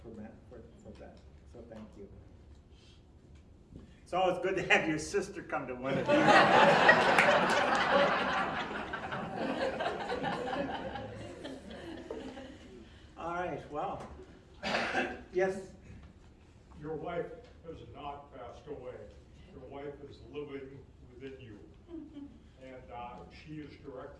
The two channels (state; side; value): identical; both; correlation 1.00